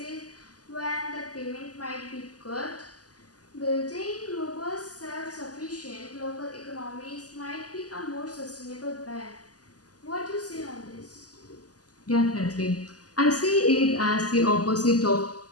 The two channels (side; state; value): right; late; 0.67 ms